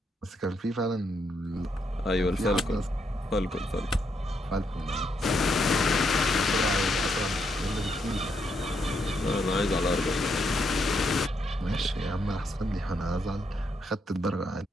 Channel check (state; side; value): normal; both; correlation 0.78